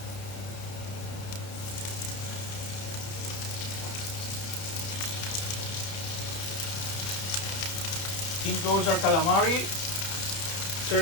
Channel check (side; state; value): right; late; 30 ms